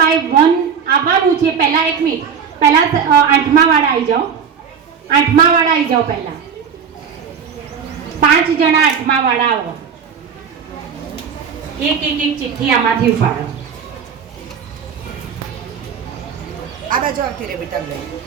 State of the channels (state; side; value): quieter; left; 6.9 dB